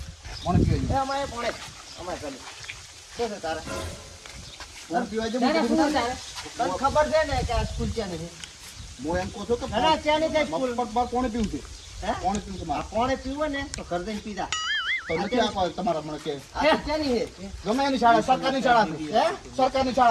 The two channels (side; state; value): both; identical; correlation 1.00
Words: કોણ પીવા એ અમારે ચાલે શું છે તારે કોણ પીવા તને ખબર છે ને કે આ સ્કૂલ ક્યાં નથી હું એમ કહું છું કે ના ક્યાં નહીં સ્કૂલ પગ કોણે પીવું છે હે કોણે પીવું છે મારે કોણે પીવો ને તો ઘર જઈને પીધા તો નથી આપવા તમારા મને કે આ ક્યાંની છે ગમે એની શાળા સરકારની શાળા છે હે સરકારની